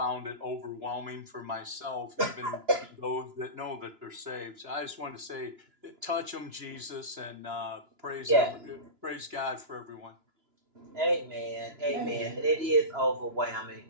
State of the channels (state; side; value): late; left; 2.9 ms